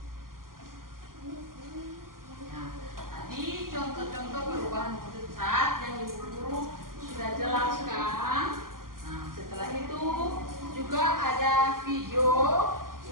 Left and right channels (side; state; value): left; late; 0.91 ms